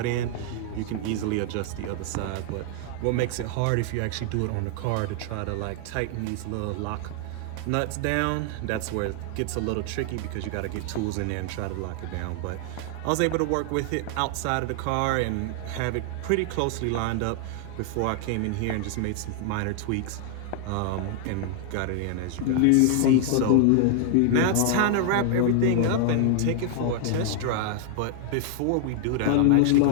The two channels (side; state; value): both; different; correlation 0.00